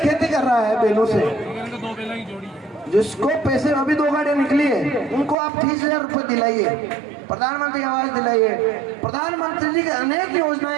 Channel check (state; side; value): drops out; left; at 5.4 s